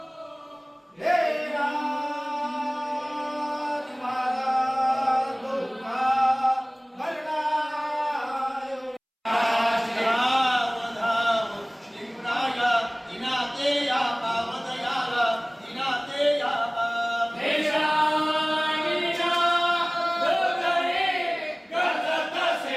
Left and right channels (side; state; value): both; identical; correlation 1.00